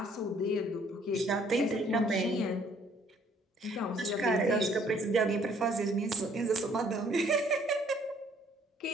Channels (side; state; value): both; normal; correlation 0.62